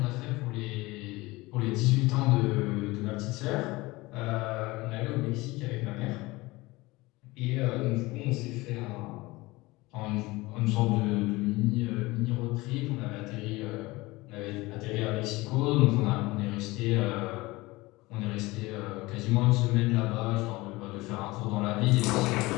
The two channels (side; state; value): right; quieter; 21.3 dB